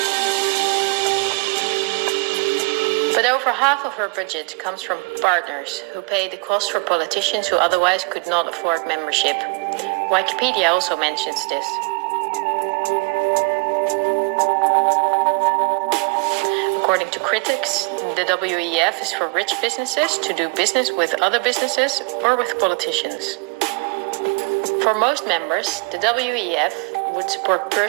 But over half of her budget comes from partners who pay the cost for politicians who otherwise could not afford membership. Wikipedia also mentions this. According to critics, the WEF is for rich businesses to do business with other businesses or with politicians. For most members, the WEF would support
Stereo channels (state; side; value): quieter; left; 29.8 dB